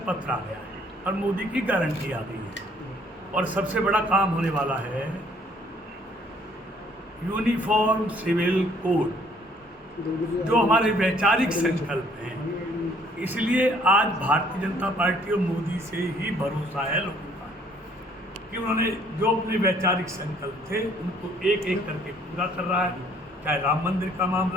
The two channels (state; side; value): normal; both; correlation 0.61